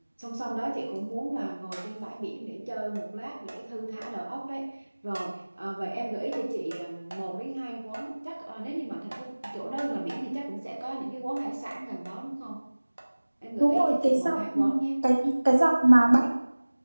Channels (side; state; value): both; inverted; correlation -1.00